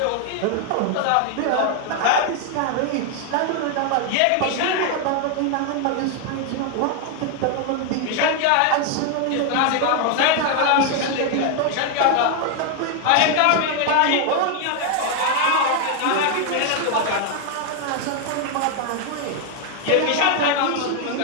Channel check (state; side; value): different; both; correlation 0.00